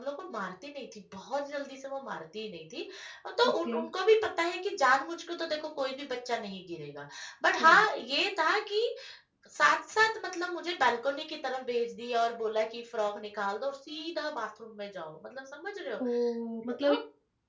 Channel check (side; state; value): both; identical; correlation 1.00